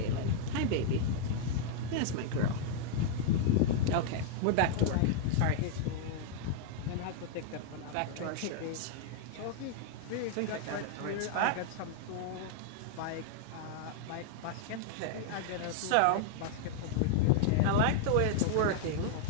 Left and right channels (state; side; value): different; both; correlation -0.01